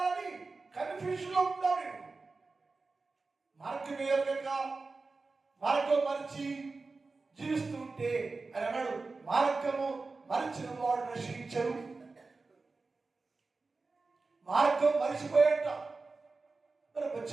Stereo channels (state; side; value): quieter; left; 3.9 dB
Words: కన్ఫ్యూజన్ లో ఉంటావు నేను. మార్గం వేయక మార్గం మరిచి జీవిస్తూ ఉంటే అని అన్నాడు, మార్గము మరిచిన వాడు నశించరు. మార్గం మరిచిపోయాట. మరి